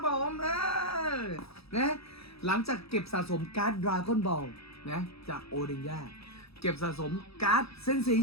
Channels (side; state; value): right; late; 0.77 ms